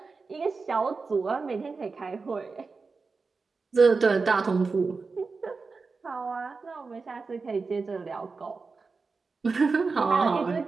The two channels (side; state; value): left; quieter; 4.4 dB